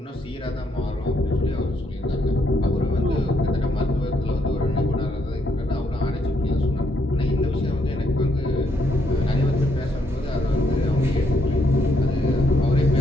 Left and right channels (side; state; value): both; normal; correlation 0.74